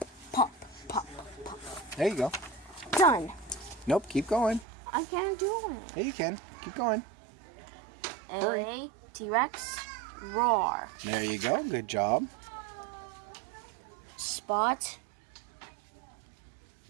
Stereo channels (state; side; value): drops out; left; at 4.7 s